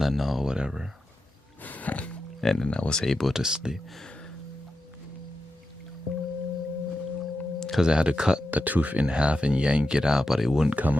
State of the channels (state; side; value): normal; both; correlation 0.89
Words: or whatever, and then I was able to sleep. Because I had to cut the tooth in half and yank it out, but it wouldn't come